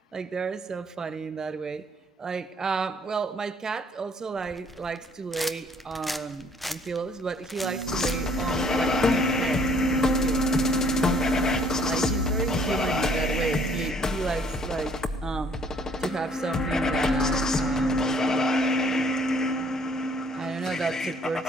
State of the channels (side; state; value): both; normal; correlation 0.60